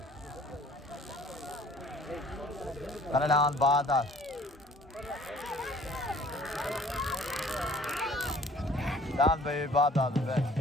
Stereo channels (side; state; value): both; normal; correlation 0.53